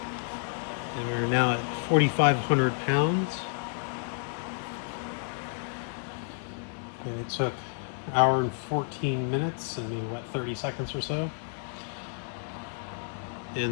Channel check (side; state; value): right; silent; 58 dB below the other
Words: And we're now at 4,500 pounds. And it took an hour and 14 minutes and maybe, what, 30 seconds or so.